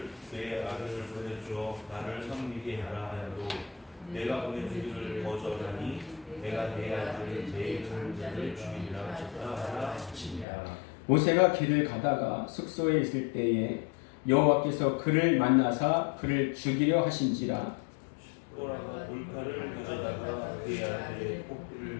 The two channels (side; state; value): right; drops out; at 10.5 s